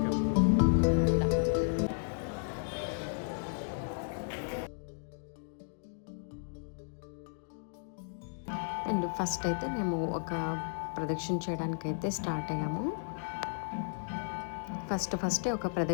అండ్ ఫస్ట్ అయితే మేము ఒక ప్రదక్షిణ చేయడానికి అయితే స్టార్ట్ అయ్యాము. ఫస్ట్ ఒక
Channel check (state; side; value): silent; right; digital silence